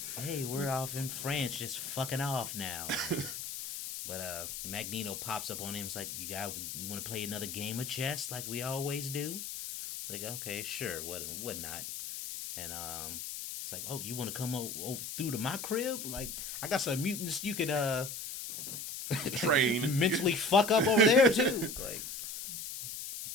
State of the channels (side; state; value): left; noise; hiss, 6 dB below the sound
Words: Hey, we're off in France, just fucking off now. But Magneto pops up on him. It's like, you want to play another game of chess like we always do? It's like, okay, sure, what not? And it's like, oh, you want to come through to my crib? Like, I got some mutants you could train mentally fuck up over there too. Like,